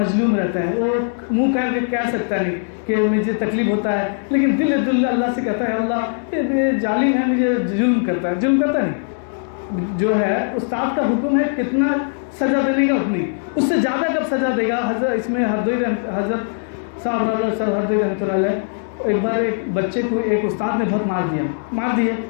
رہتا ہے. وہ منہ کر کے کہہ سکتا نہیں کہ مجھے تکلیف ہوتا ہے, لیکن دل اللہ سے کہتا ہے اللہ یہ ظالم ہے, مجھے ظلم کرتا نہیں. جو ہے استاد کا حکم ہے کتنا سزا دینے کا اتنی, اس سے زیادہ کب سزا دے گا. اس میں حضرت صاحب ہردوئی رحمۃ اللہ علیہ, ایک بار ایک بچے کو ایک استاد نے بہت مار دیا.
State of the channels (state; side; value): silent; right; digital silence